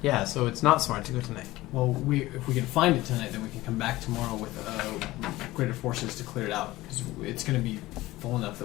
Yeah. So it's not smart to go tonight. Well, if we can find it tonight, then we can come back tomorrow with greater forces to clear it out. Because it's going to be full enough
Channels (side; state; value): right; quieter; 18.0 dB